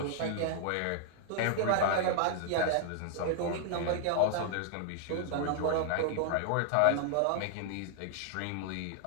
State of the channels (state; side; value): different; both; correlation -0.01